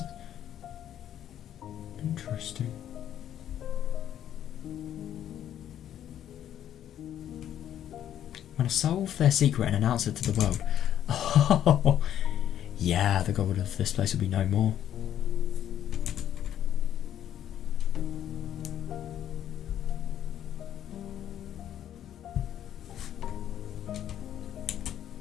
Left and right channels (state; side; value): quieter; right; 10.7 dB